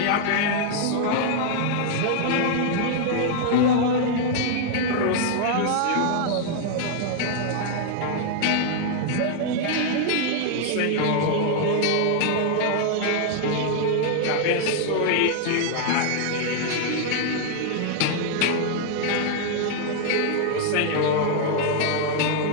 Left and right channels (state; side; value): different; both; correlation 0.00